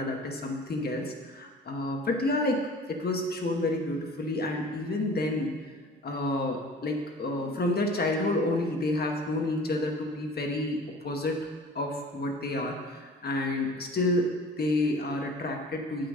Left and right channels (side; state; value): both; normal; correlation 0.44